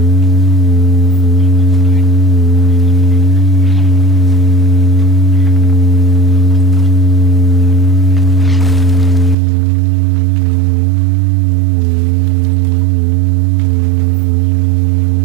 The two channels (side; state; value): left; drops out; at 9.3 s